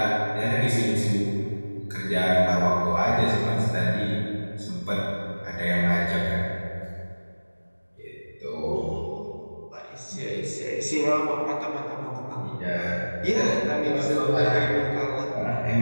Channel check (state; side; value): inverted; both; correlation -1.00